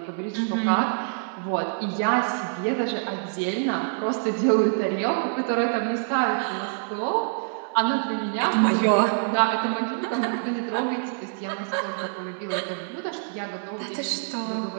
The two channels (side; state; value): left; silent; 61 dB below the other